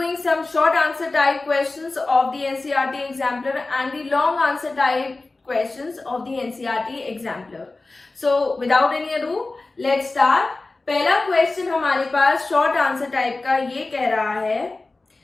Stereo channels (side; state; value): right; quieter; 3.3 dB